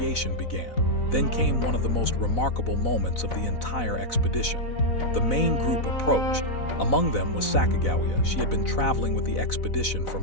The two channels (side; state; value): right; late; 4.0 ms